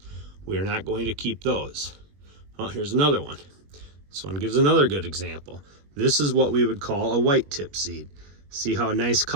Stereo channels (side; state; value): left; late; 21 ms